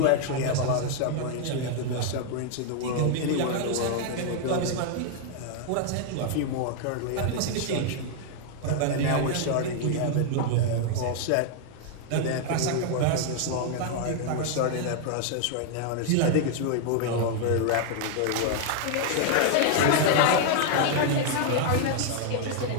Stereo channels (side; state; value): both; different; correlation 0.00